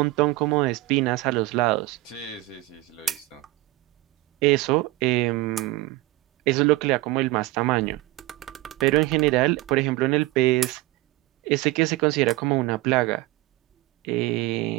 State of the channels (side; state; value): left; quieter; 19.4 dB